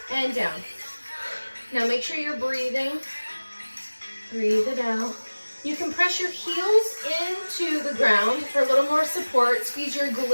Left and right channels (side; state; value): both; inverted; correlation -1.00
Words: and down. Now make sure you're breathing. Breathe it out. You can press your heels into the ground for a little more support. Squeeze your